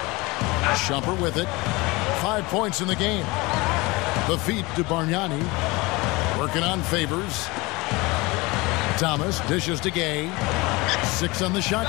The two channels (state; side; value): quieter; right; 23.6 dB